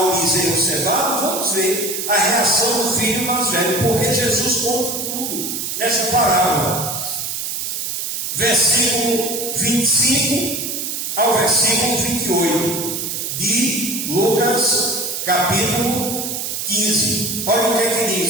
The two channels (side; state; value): right; noise; hiss, 4 dB below the sound